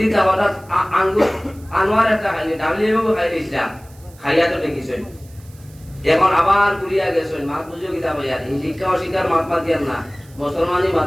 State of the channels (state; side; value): noise; right; hiss, 26 dB below the sound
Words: যাওয়াটা আনোয়ার একটা খাইনি ডাবলিও খাই দিয়েছিলাম খাইয়া তো দেখিছেন এখন আবার ঘুরিয়া গেছেন মাত বুঝিও কিতাব ইয়ার শিক্ষা অশিক্ষার মাত মাতিয়ার না মুসলমানই